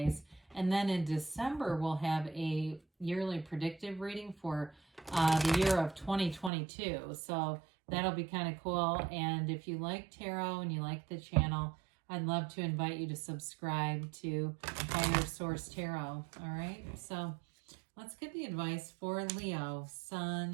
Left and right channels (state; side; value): drops out; left; at 6.5 s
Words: And then in December, we'll have a yearly predictive reading for the year of 2022. So that'll be kind of cool. And if you like tarot and you like the channel, I'd love to invite you to subscribe to Higher Source Tarot. All right. So let's get the advice for Leo,